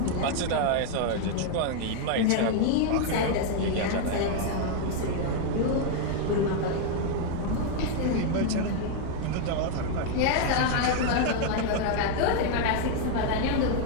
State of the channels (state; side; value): different; both; correlation 0.00